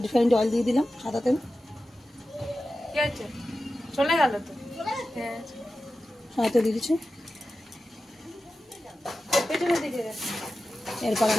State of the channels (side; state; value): both; normal; correlation 0.93